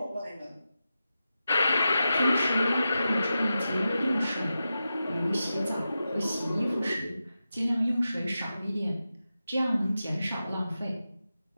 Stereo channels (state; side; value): inverted; both; correlation -0.91